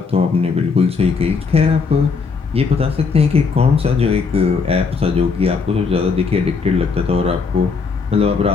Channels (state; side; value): quieter; right; 5.0 dB